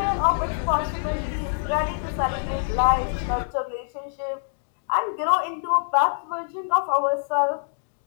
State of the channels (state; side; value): silent; right; digital silence